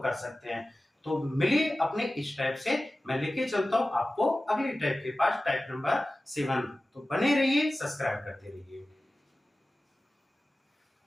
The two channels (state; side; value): normal; both; correlation 0.96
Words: सकते हैं। तो मिलिए अपने इस टाइप से, मैं लेके चलता हूं आपको अगली टाइप के पास, टाइप नंबर 7। तो बने रहिए, सब्सक्राइब करते रहिए।